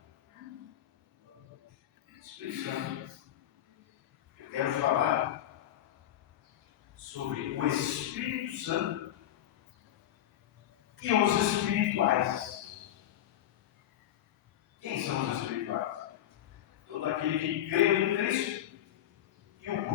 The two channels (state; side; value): quieter; right; 11.8 dB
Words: Espírito Santo. Eu quero falar sobre o Espírito Santo e os espirituais. Quem são os espirituais? Todo aquele que crê em Cristo e o